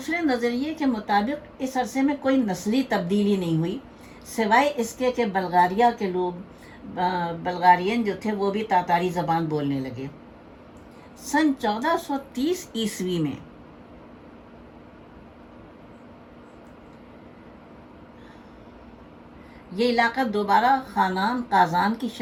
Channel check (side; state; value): both; identical; correlation 1.00